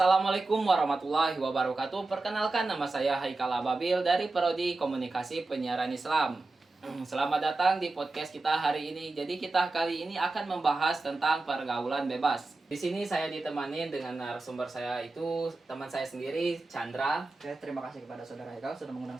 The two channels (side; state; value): left; quieter; 3.3 dB